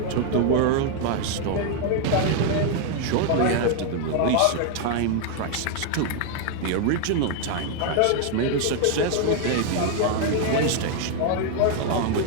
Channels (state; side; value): different; both; correlation 0.00